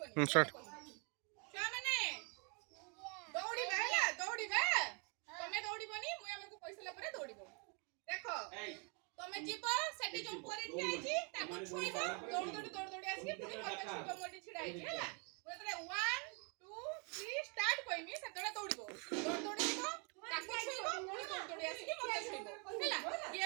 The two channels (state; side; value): quieter; left; 35.3 dB